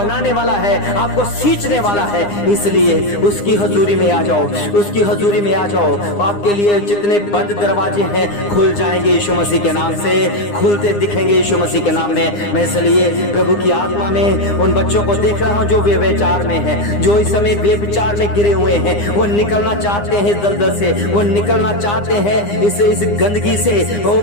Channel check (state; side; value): late; right; 9.8 ms